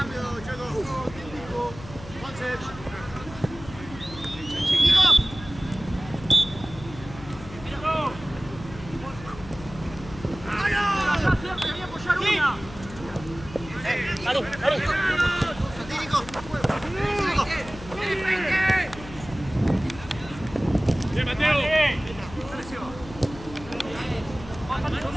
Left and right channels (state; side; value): noise; left; hum, 14 dB below the sound